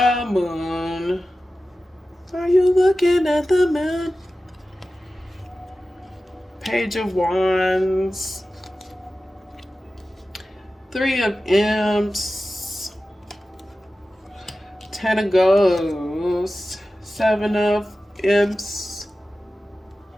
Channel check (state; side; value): normal; both; correlation 0.95